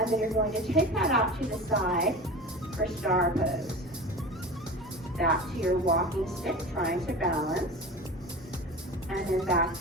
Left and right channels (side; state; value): both; normal; correlation 0.33